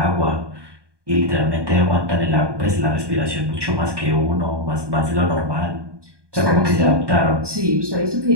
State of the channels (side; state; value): left; late; 1.2 ms